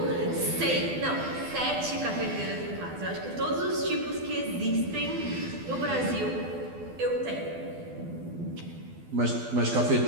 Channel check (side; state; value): left; late; 12 ms